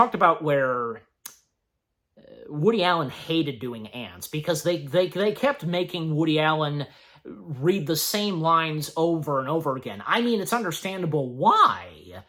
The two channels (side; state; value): both; identical; correlation 1.00